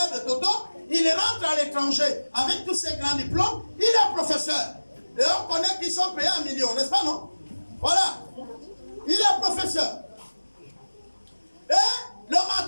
de Toto, il rentre à l'étranger avec tous ses grands diplômes. Il est professeur. Et on connaît qu'ils sont payés 1 million, n'est-ce pas, non? Voilà. Il est professeur. Et le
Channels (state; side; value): inverted; both; correlation -1.00